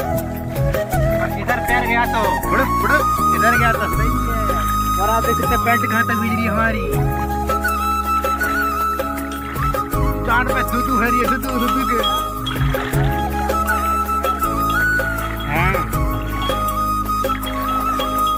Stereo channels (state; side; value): identical; both; correlation 1.00